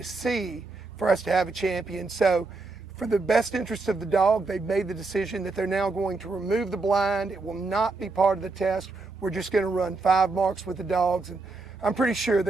see for us to have a champion. So for the best interest of the dog, they've made the decision that they're now going to remove the blind. It will not be part of the test. We're just going to run 5 marks with the dogs, and I'm pretty sure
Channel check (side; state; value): left; quieter; 3.7 dB